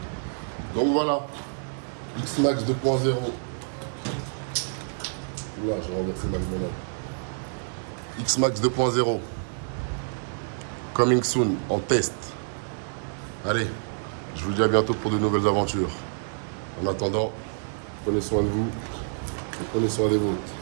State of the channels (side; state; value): left; silent; digital silence